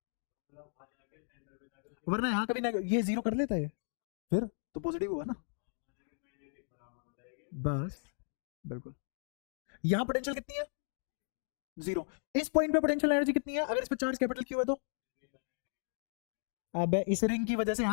वरना यहां कभी ना ये जीरो कर लेता है, फिर तो पॉजिटिव हुआ ना। बस बिल्कुल। यहां पोटेंशियल कितनी है? जीरो। इस पॉइंट पे पोटेंशियल एनर्जी कितनी है अगर इस पे चार्ज कैपिटल क्यू है तो? अब इस रिंग की वजह से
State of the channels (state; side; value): silent; right; digital silence